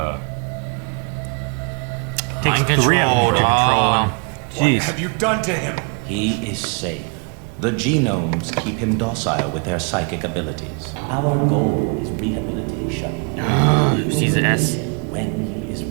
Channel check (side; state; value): left; quieter; 34.6 dB